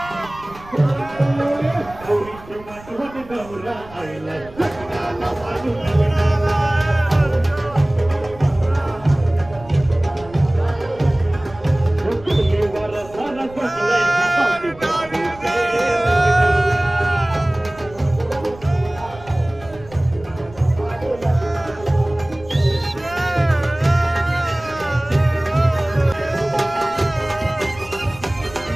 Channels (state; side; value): noise; right; rumble, 20 dB below the sound